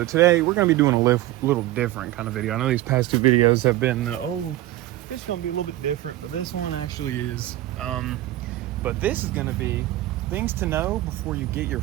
today we're going to be doing a little different kind of video. I know these past two videos have been, it's going to be a little bit different, but this one actually is. But this is going to be things to know before you get your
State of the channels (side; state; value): left; quieter; 15.6 dB